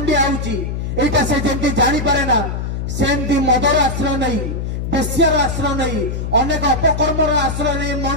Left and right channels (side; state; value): left; noise; hum, 3 dB below the sound